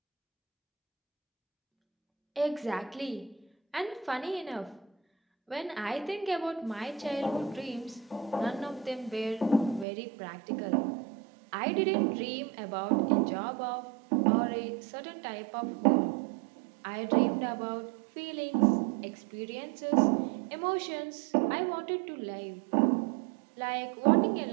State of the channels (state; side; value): drops out; left; at 9.9 s